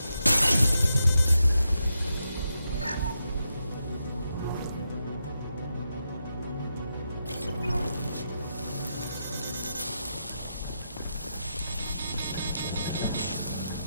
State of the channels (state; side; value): inverted; both; correlation -0.85